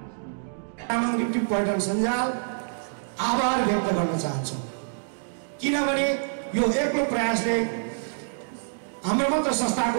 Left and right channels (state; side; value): silent; left; digital silence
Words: तामाङ लिप्टी पर्यटन सञ्जाल आभार व्यक्त गर्न चाहन्छौँ। किनभने यो एक्लो प्रयासले, हाम्रो मात्र